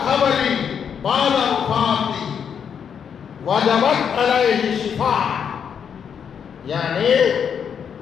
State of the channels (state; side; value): quieter; right; 7.5 dB